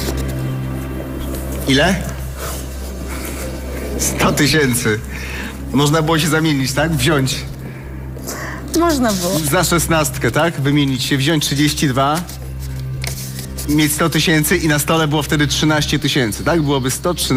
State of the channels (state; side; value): identical; both; correlation 1.00